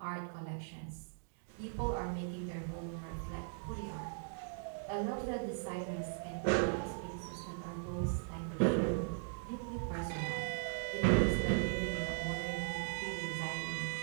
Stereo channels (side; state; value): left; silent; digital silence